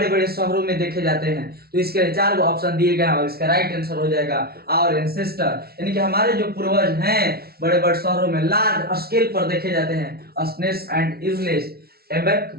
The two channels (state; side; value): late; left; 0.45 ms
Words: बड़े शहरों में देखे जाते हैं। तो इसके लिए 4 ऑप्शन दिए गए हैं और इसका राइट आंसर हो जाएगा आवर एंसेस्टर, यानी कि हमारे जो पूर्वज हैं बड़े बड़े शहरों में लार्ज स्केल पर देखे जाते हैं, अस्नेस एंड इजलेस एबेक